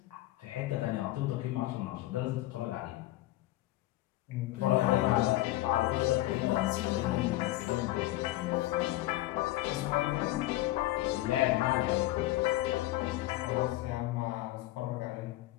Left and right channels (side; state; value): right; quieter; 16.9 dB